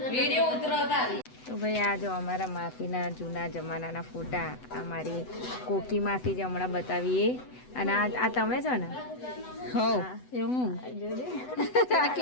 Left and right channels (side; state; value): right; late; 8.0 ms